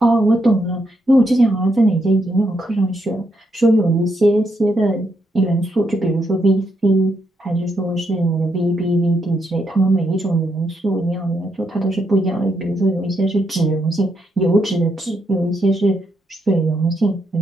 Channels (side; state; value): both; normal; correlation 0.79